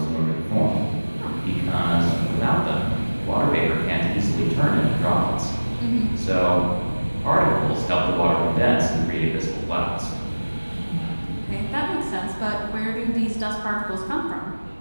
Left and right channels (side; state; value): both; inverted; correlation -1.00